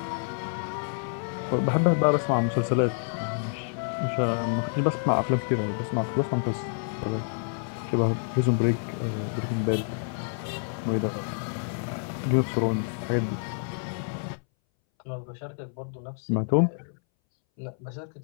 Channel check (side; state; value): right; silent; 59 dB below the other